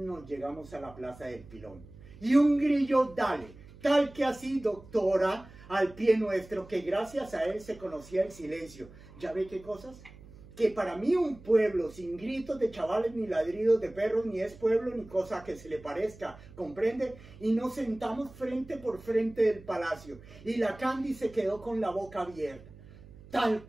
llegamos a la plaza del Pilón. Y un grillo dale, tal que así, doctora, al pie nuestro, que gracias a él se conocía el silencio. ¿Ya ve qué cosas? Que para mí un pueblo sin gritos de chavales ni ladridos de perros ni es pueblo ni cosa que se le parezca, ¿comprende? Y nos sentamos frente por frente del palacio y la Candy se quedó con la boca abierta, tal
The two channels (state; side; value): noise; right; hum, 20 dB below the sound